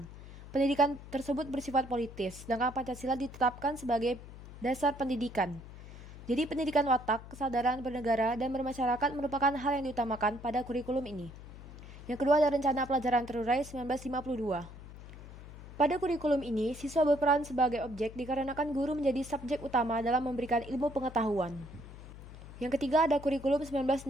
Pendidikan tersebut bersifat politis, sedangkan Pancasila ditetapkan sebagai dasar pendidikan. Jadi pendidikan watak, kesadaran bernegara, dan bermasyarakat merupakan hal yang diutamakan pada kurikulum ini. Yang kedua ada rencana pelajaran terurai 1952. Pada kurikulum ini, siswa berperan sebagai objek dikarenakan guru menjadi subjek utama dalam memberikan ilmu pengetahuan. Yang ketiga ada kurikulum 1964.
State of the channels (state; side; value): noise; left; hum, 15 dB below the sound